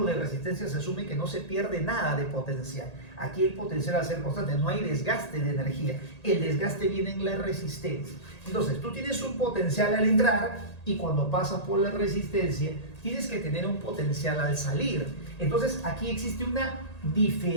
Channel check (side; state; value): right; late; 1.8 ms